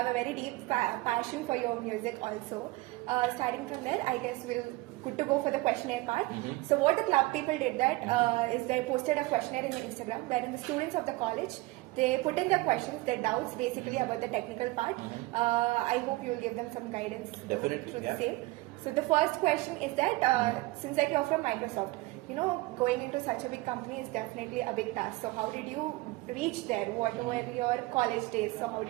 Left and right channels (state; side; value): quieter; left; 21.4 dB